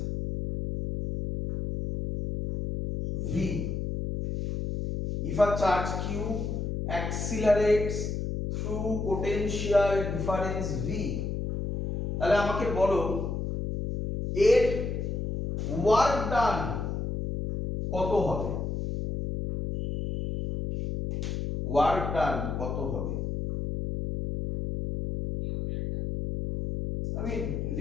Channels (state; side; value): noise; left; hum, 3 dB below the sound